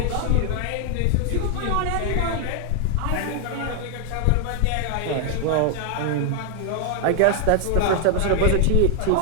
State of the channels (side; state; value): both; different; correlation 0.00